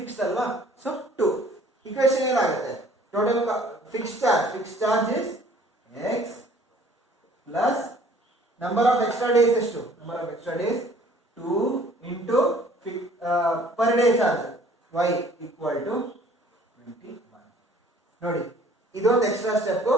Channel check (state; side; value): normal; both; correlation 0.54